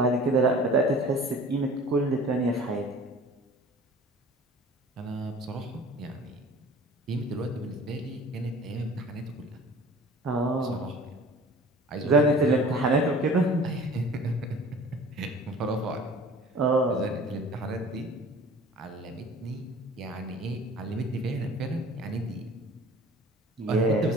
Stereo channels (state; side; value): normal; both; correlation 0.45